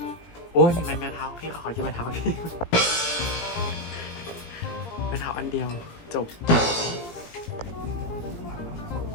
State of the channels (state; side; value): late; right; 17 ms